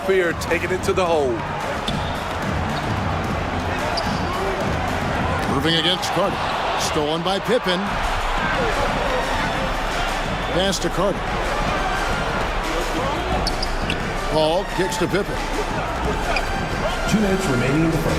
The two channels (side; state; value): both; identical; correlation 1.00